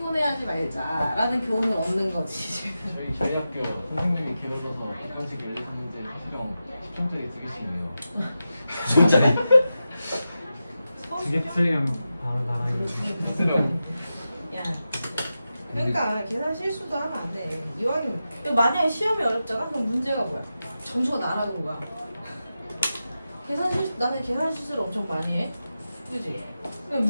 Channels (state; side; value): inverted; both; correlation -0.91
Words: 말자라는 교훈을 얻는 거지. 저희 학교 선생님이 길어져서 객관식 1, 2, 3문제 수령 10점짜리 2개씩이네요. 진짜네. 두개 틀리면 바로 나가기. 수령. 야. 그러니까 계산 실수도 하면 안 돼. 이왕이면 만약에 시험이 어렵잖아? 그럼 문제가 뭐야? 점수가 날아가는 거야. 나는 계산 실수를 엄청 많이 해. 그지? 근데